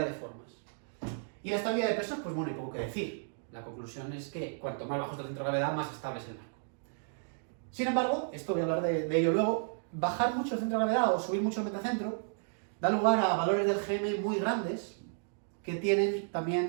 de formas. Y la estabilidad de pesos, pues bueno, hay poco que decir. La conclusión es que cuanto más bajo está el centro de gravedad, más estable es el barco. Sin embargo, esto voy a hablar de ello luego, bajar mucho el centro de gravedad o subir mucho el metacentro da lugar a valores del GM muy grandes que tienen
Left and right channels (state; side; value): silent; left; digital silence